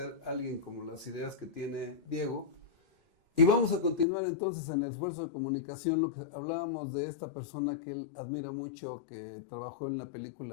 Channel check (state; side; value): drops out; right; at 4.0 s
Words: a alguien como las ideas que tiene Diego. Y vamos a continuar entonces en el esfuerzo de comunicación, lo que hablábamos de esta persona que él admira mucho, que trabajó en la